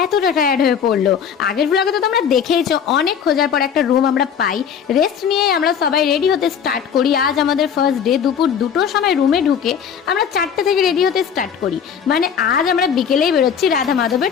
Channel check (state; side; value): quieter; right; 7.6 dB